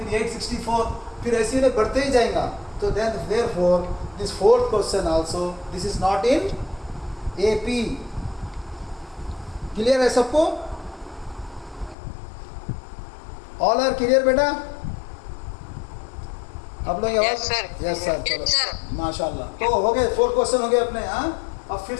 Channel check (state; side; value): drops out; right; at 12.0 s